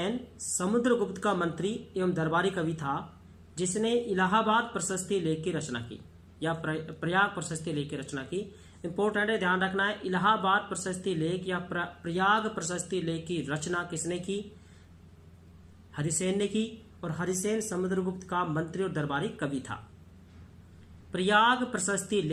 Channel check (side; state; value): both; identical; correlation 1.00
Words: समुद्रगुप्त का मंत्री एवं दरबारी कवि था, जिसने इलाहाबाद प्रशस्ति लेख की रचना की या प्रयाग प्रशस्ति लेख की रचना की। इंपॉर्टेंट है, ध्यान रखना है। इलाहाबाद प्रशस्ति लेख या प्रयाग प्रशस्ति लेख की रचना किसने की? हरिसेन ने की। और हरिसेन समुद्रगुप्त का मंत्री और दरबारी कवि था। प्रयाग प्रशस्ति